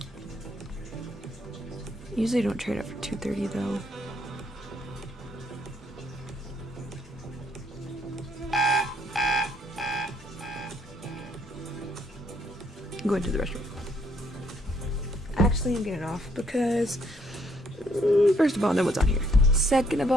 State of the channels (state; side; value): normal; both; correlation 0.69